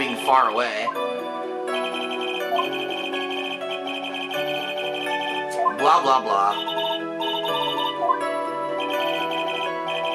far away. Blah, blah, blah.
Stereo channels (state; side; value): identical; both; correlation 1.00